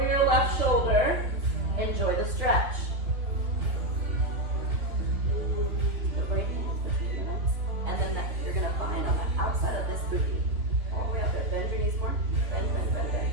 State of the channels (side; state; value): left; late; 3.5 ms